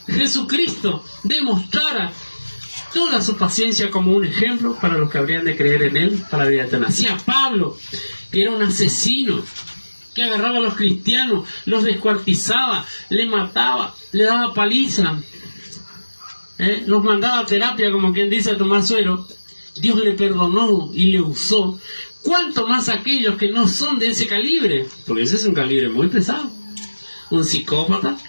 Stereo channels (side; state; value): both; inverted; correlation -1.00